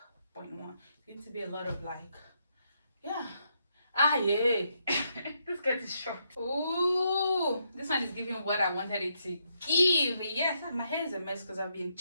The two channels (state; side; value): inverted; both; correlation -0.78